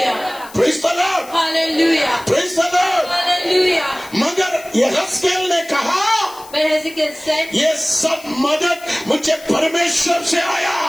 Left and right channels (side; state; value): left; noise; hiss, 20 dB below the sound